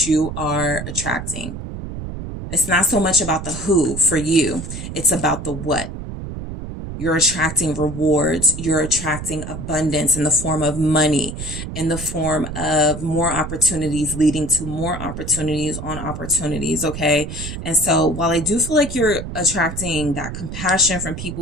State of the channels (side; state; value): right; noise; rumble, 8 dB below the sound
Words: you are attracting. It's not so much about the who for you. It's about the what. You're attracting rewards. You're attracting abundance in the form of money, in the form of more opportunities leading to more opportunities on opportunities. Okay. And so while I do feel like you're attracting that compassion from